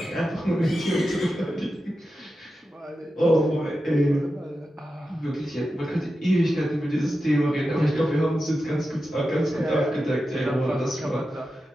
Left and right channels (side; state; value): both; normal; correlation 0.91